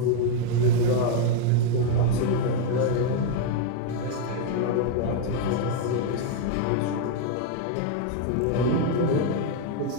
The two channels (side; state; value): both; different; correlation 0.00